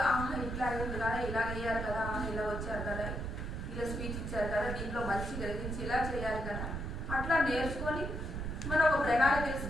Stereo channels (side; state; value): right; noise; rumble, 4 dB below the sound